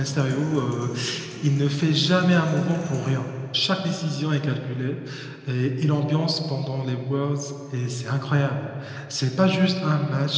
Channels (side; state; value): both; identical; correlation 1.00